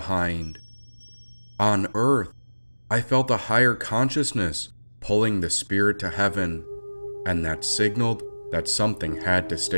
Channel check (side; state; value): both; inverted; correlation -1.00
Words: On earth, I felt a higher consciousness pulling the spirit to heaven, and that signaled that something had to